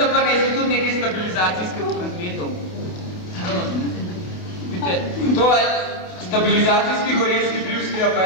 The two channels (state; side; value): late; right; 28 ms